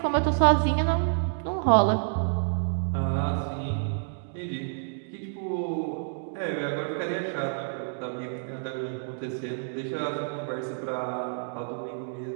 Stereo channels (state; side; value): silent; left; digital silence